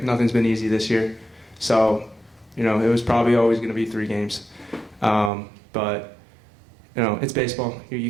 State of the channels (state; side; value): drops out; left; at 5.3 s